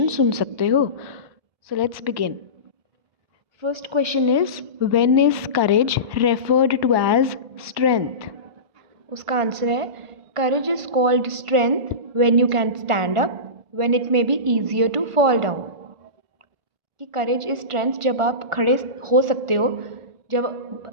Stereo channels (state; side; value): late; left; 1.5 ms